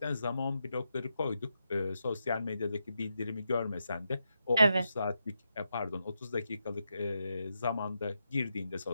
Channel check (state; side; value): inverted; both; correlation -0.85